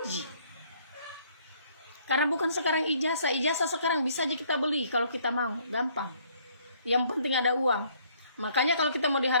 Ji. Karena bukan sekarang ijazah sekarang bisa aja kita beli kalau kita mau, gampang. Yang penting ada uang. Makanya kalau kita mau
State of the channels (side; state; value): both; inverted; correlation -0.63